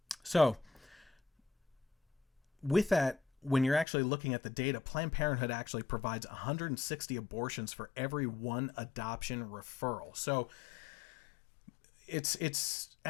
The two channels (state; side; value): drops out; right; at 3.9 s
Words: So with that, when you're actually looking at the data, Planned Parenthood actually provides 160 abortions for every one adoption referral. So it's